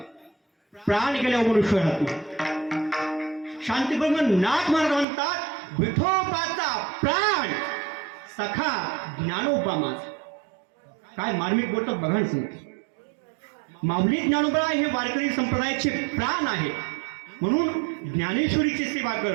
प्राण गेल्यावर मनुष्य राहतो. शांतीब्रह्म नाथ महाराज म्हणतात, विठोबाचा प्राण सखा ज्ञानोबा माझा. काय मार्मिक बोलतात बघा ना सांगते. माऊली ज्ञानोबराय हे वारकरी संप्रदायाचे प्राण आहे. म्हणून ज्ञानेश्वरीची सेवा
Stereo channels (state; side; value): drops out; left; at 5.1 s